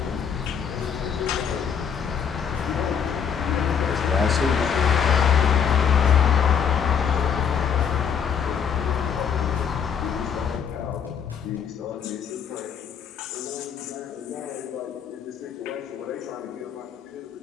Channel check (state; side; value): quieter; right; 7.4 dB